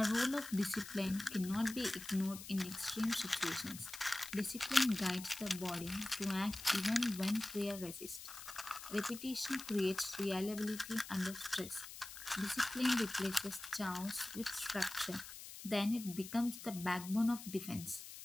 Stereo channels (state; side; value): noise; left; hiss, 12 dB below the sound